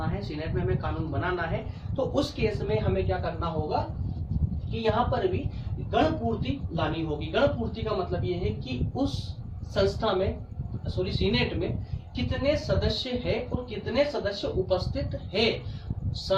है, सीनेट में हमें कानून बनाना है, तो उस केस में हमें क्या करना होगा कि यहाँ पर भी गण पूर्ति लानी होगी। गण पूर्ति का मतलब ये है कि उस संस्था में, सीनेट में कितने सदस्य है और कितने सदस्य उपस्थित है,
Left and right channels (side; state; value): both; identical; correlation 1.00